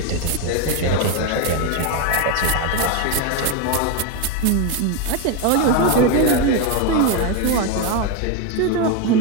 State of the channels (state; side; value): different; both; correlation 0.02